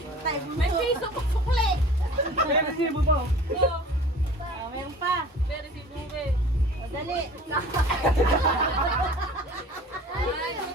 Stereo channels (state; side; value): normal; both; correlation 0.44